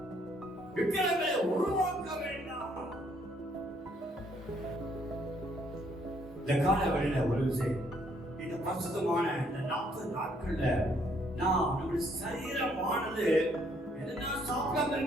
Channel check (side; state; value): both; normal; correlation 0.68